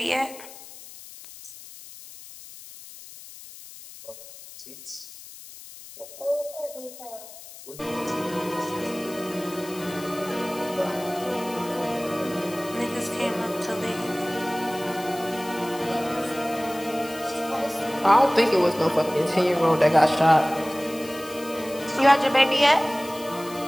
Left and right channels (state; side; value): noise; left; hiss, 16 dB below the sound